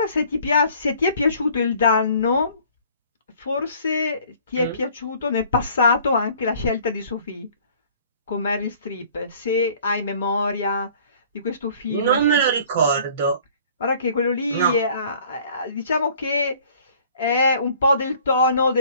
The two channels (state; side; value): inverted; both; correlation -0.54